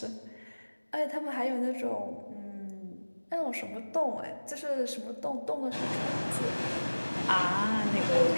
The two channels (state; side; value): inverted; both; correlation -1.00